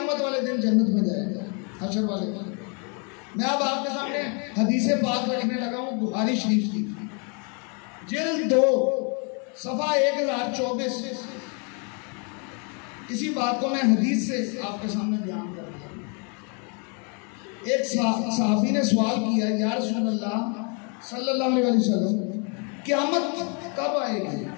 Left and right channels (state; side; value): quieter; right; 36.8 dB